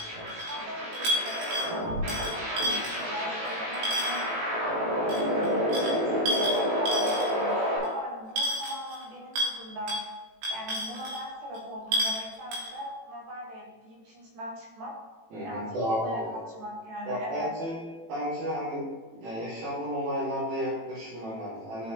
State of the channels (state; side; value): late; left; 18 ms